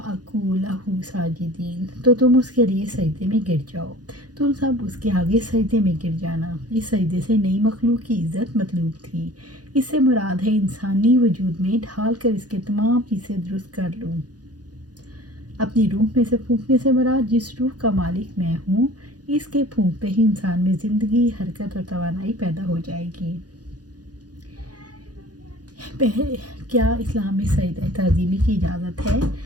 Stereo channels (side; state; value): left; late; 0.69 ms